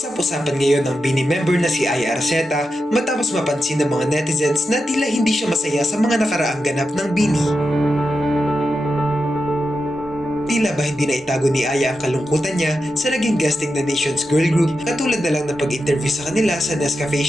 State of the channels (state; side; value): normal; both; correlation 0.89